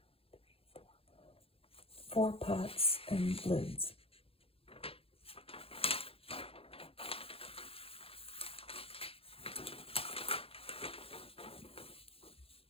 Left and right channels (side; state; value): right; late; 0.27 ms